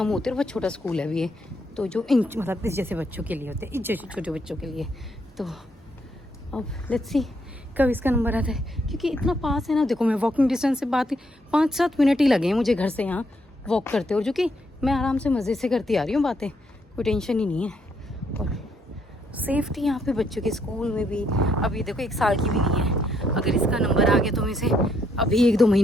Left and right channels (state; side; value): normal; both; correlation 0.73